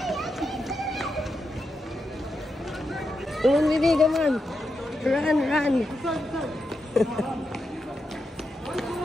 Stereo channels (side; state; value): both; normal; correlation 0.86